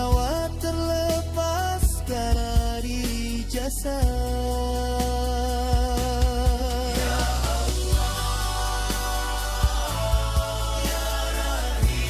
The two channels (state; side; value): identical; both; correlation 1.00